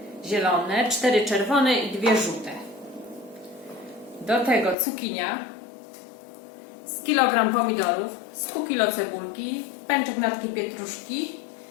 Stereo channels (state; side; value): drops out; right; at 4.8 s